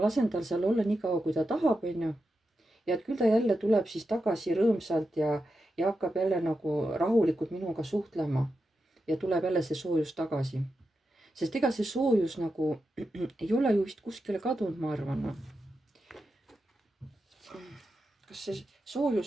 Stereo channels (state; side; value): normal; both; correlation 0.88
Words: lasen tal seal olla nii kaua, kui ta tahab, onju. ja et küll ta jälle tuleb siis tagasi rõõmsalt ja hakkab jälle nagu rahulikult minuga suhtlema. ja tuleb jälle see soojus tagasi. sest ega see soojus nagu ei ole ju vist kuskile kadunud, ma arvan. kas see